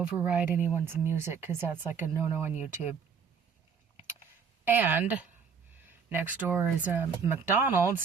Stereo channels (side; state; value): left; quieter; 6.2 dB